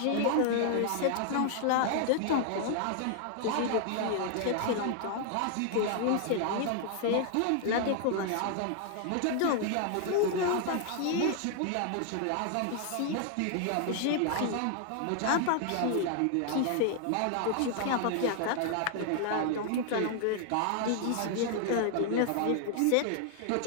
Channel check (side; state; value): both; different; correlation 0.00